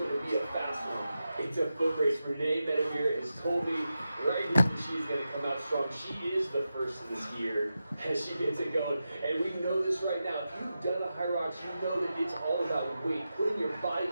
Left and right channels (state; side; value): inverted; both; correlation -0.91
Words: to be a fast one. It's a foot race. Renee Medevere is totally right here. She's going to come out strong. She is the first of this year as she gets it going. And we know this right now. If you've done a high rocks, you know that it's all about weight. Putting your body